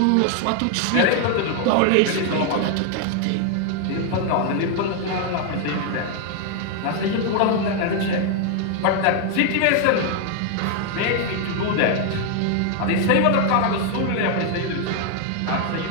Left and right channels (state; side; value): different; both; correlation 0.00